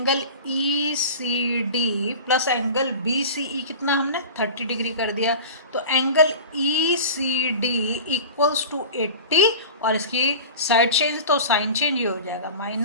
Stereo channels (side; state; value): both; inverted; correlation -0.34